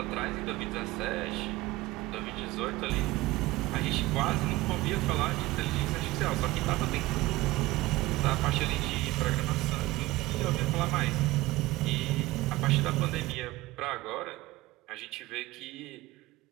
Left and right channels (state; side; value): quieter; left; 19.0 dB